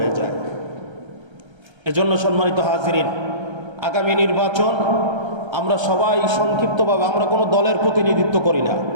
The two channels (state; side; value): late; left; 1.3 ms